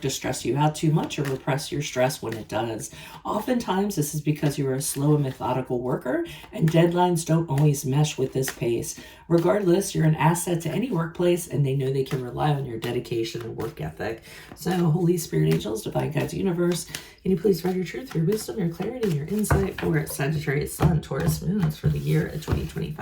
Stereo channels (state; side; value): identical; both; correlation 1.00